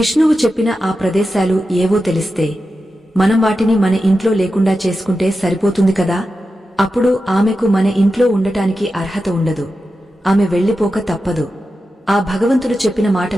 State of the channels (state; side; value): normal; both; correlation 0.91